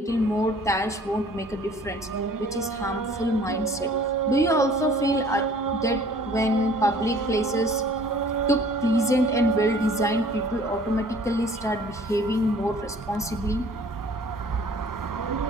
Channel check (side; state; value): both; normal; correlation 0.52